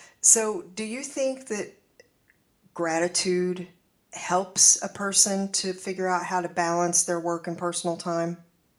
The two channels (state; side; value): identical; both; correlation 1.00